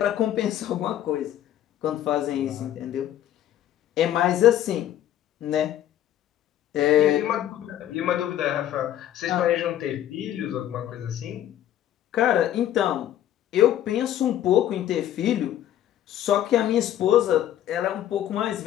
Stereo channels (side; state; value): right; quieter; 11.8 dB